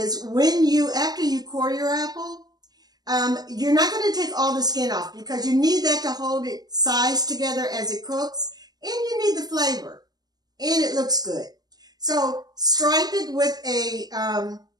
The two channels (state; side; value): late; left; 0.19 ms